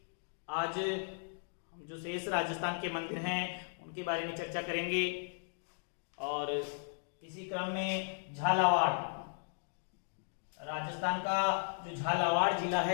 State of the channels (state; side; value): silent; right; digital silence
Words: आज हम जो शेष राजस्थान के मंदिर हैं उनके बारे में चर्चा करेंगे। और इसी क्रम में झालावाड़, राजस्थान का जो झालावाड़ जिला